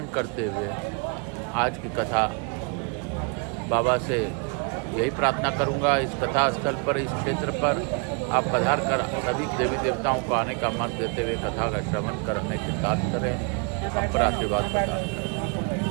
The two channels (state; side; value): quieter; left; 35.5 dB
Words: करते हुए आज की कथा बाबा से यही प्रार्थना करूंगा। इस कथा स्थल पर, इस क्षेत्र पर आप पधार कर सभी देवी देवताओं को आने का मत देते हुए कथा का श्रवण करने के साथ करें, हम पर आशीर्वाद प्रदान करें।